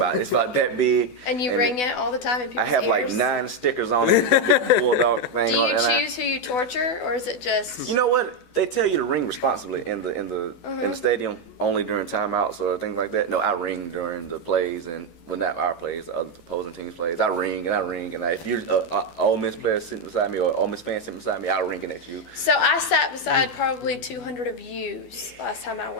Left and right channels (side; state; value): right; late; 12 ms